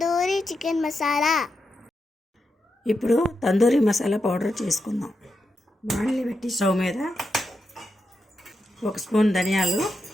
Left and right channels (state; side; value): normal; both; correlation 0.86